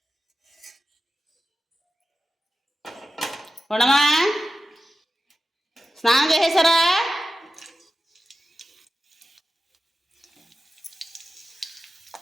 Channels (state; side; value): normal; both; correlation 0.93